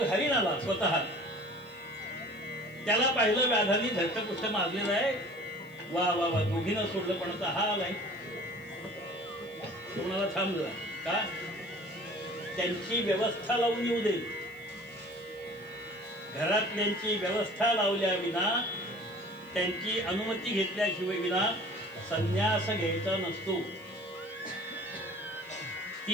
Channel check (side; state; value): right; noise; hiss, 29 dB below the sound